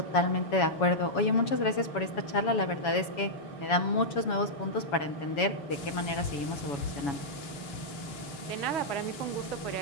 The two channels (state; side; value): late; right; 7.1 ms